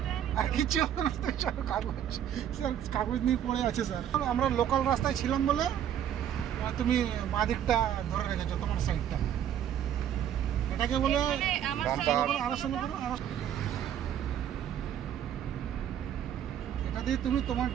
আর কিছু কাগজ নিয়ে পড়ে আছে স্যার। আমরা লোকাল রাস্তায় ছিলাম বলে তুমি বাঁ দিকটা ধরে রেখেছো, তোমার সাইডটা। এটাকে বলে এটা দিয়ে তুমি তোমার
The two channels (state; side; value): quieter; left; 10.0 dB